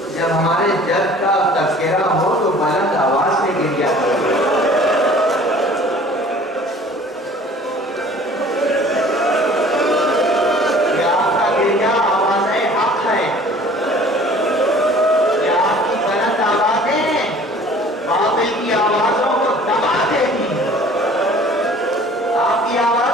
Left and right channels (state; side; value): normal; both; correlation 0.49